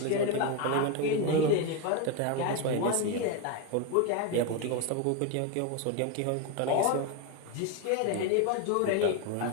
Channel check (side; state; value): both; different; correlation 0.02